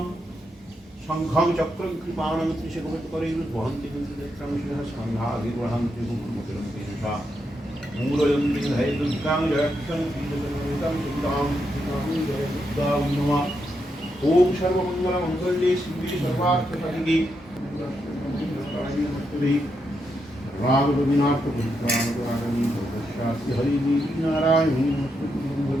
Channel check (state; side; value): normal; both; correlation 0.82